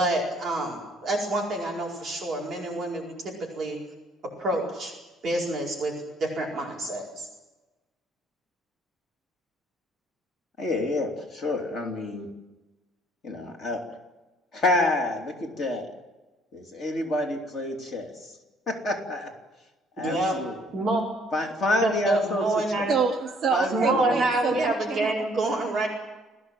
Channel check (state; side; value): normal; both; correlation 0.62